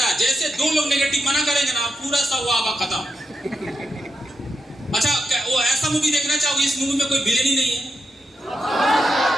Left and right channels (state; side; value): normal; both; correlation 0.86